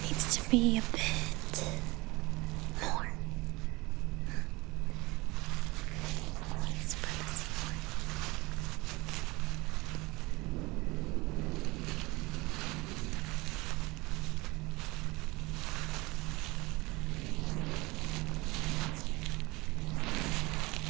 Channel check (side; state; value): left; quieter; 23.1 dB